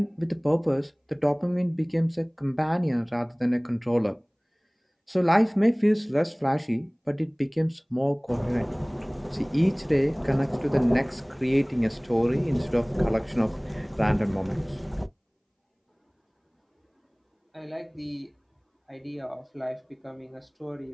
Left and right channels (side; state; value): both; identical; correlation 1.00